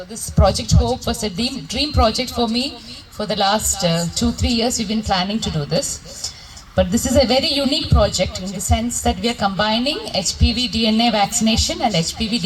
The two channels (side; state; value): both; identical; correlation 1.00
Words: this project HOPE was a dream project for me. For the last 2-3 years, we've been planning to do this. But this is a very unique project in the sense that we are combining HPV DNA vaccination and HPV